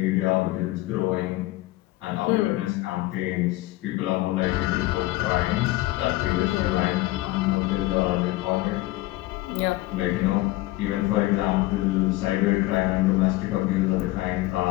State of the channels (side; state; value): right; quieter; 18.4 dB